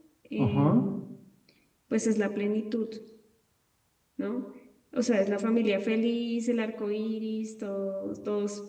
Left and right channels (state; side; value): identical; both; correlation 1.00